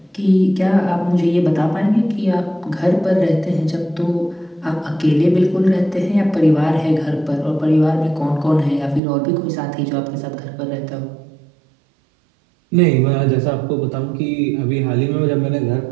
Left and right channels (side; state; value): left; drops out; at 9.0 s